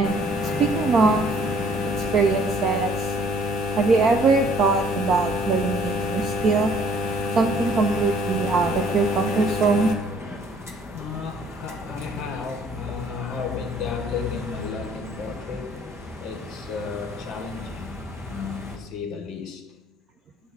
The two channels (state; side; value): normal; both; correlation 0.59